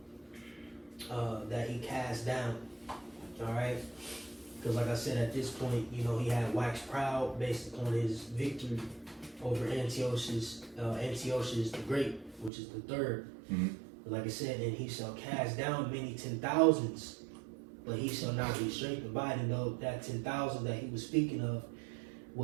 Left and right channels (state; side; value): drops out; left; at 12.5 s